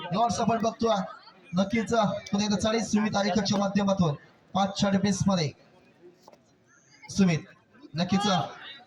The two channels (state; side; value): identical; both; correlation 1.00